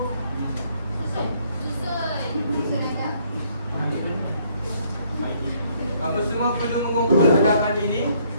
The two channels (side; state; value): both; inverted; correlation -0.66